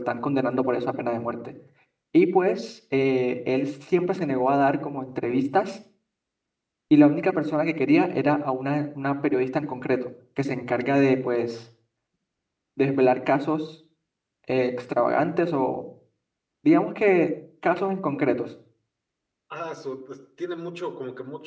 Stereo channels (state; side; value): identical; both; correlation 1.00